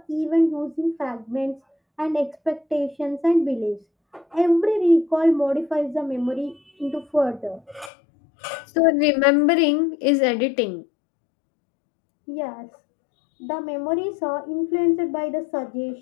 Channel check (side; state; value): right; drops out; at 7.9 s